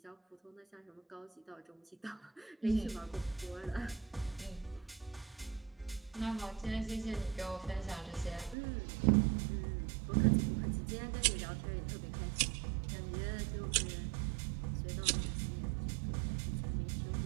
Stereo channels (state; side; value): drops out; left; at 8.6 s